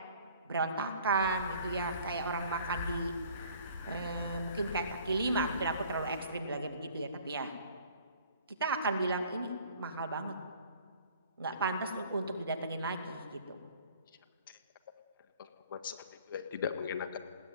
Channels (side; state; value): both; inverted; correlation -0.52